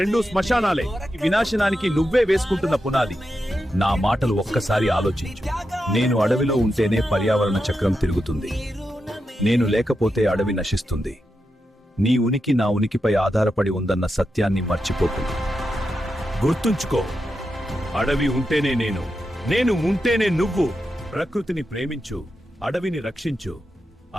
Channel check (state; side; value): normal; both; correlation 0.88